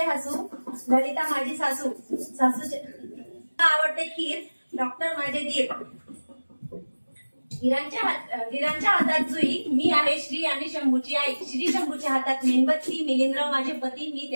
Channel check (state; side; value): inverted; both; correlation -1.00